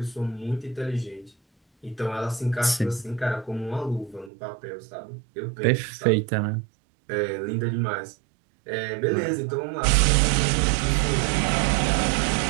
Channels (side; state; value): left; drops out; at 4.3 s